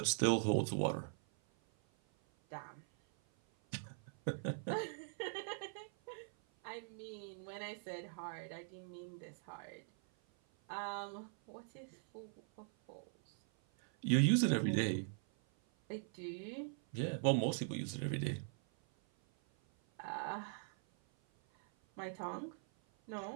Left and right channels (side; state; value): left; silent; 50 dB below the other